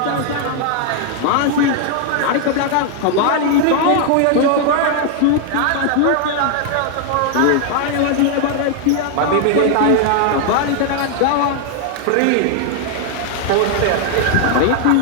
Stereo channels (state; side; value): different; both; correlation 0.00